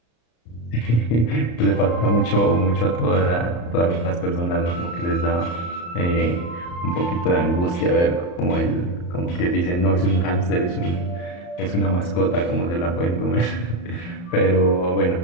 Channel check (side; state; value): right; late; 34 ms